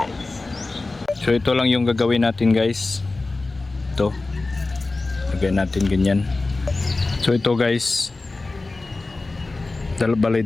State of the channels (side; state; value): right; quieter; 3.3 dB